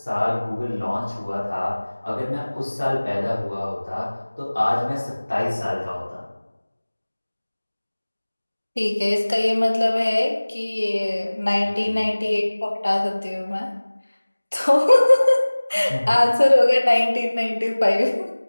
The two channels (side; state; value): both; inverted; correlation -1.00